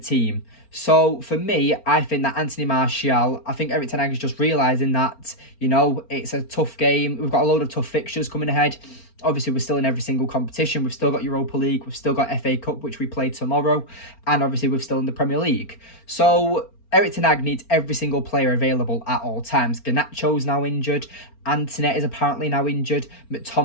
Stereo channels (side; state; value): right; late; 4.4 ms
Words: So for me, I think that Anthony Martial, I think Erik ten Hag is just realising that, you know, it's a tough game. We've got a load of tough fixtures coming ahead. Obviously, we're still in every single competition. We've still got Europa League. We've still got FA Cup, which we play tomorrow. And obviously, we're still in the Premier League. So Erik ten Hag needs every single player available at all times. Garnacho's now injured. Antoinette is apparently now injured.